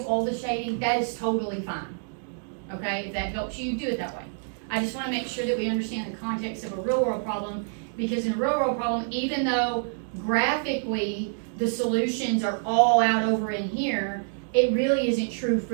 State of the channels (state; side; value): silent; left; digital silence